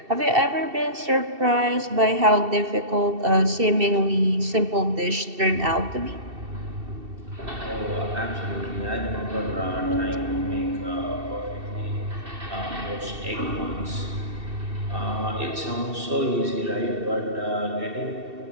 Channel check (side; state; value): left; late; 2.7 ms